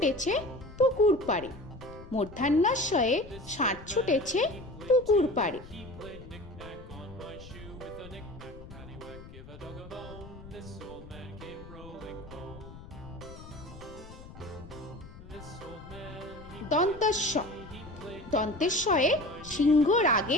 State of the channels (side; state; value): left; noise; rumble, 16 dB below the sound